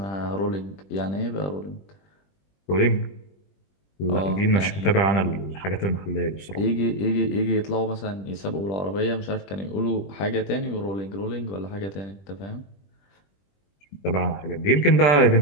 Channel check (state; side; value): late; right; 20 ms